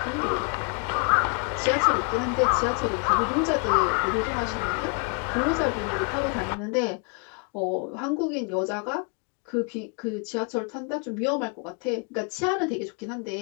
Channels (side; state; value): right; quieter; 37.9 dB